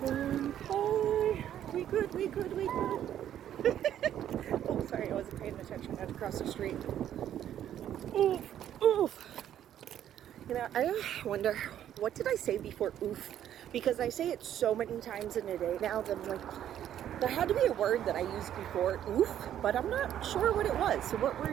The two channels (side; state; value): left; quieter; 10.8 dB